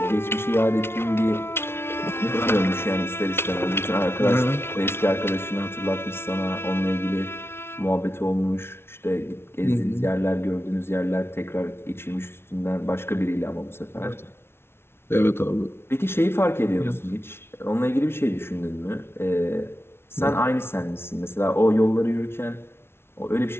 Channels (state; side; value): late; right; 0.12 ms